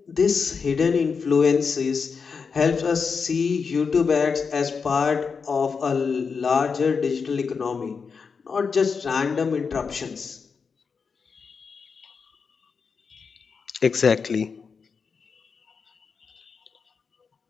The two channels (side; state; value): right; quieter; 5.5 dB